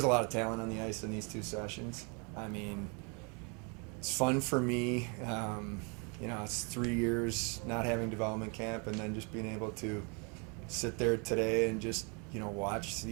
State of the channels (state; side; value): quieter; left; 34.3 dB